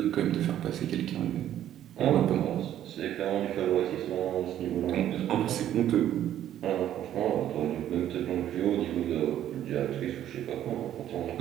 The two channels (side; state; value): left; quieter; 11.5 dB